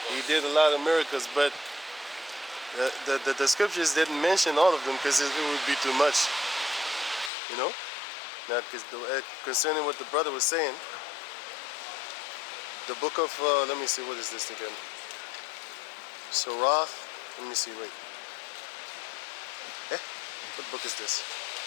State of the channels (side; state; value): right; drops out; at 7.3 s